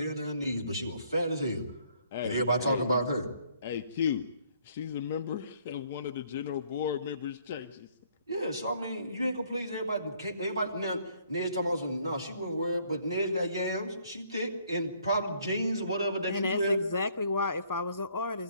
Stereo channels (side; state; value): both; inverted; correlation -0.64